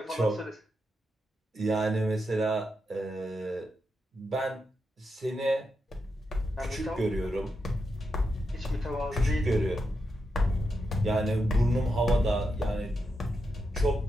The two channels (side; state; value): both; normal; correlation 0.85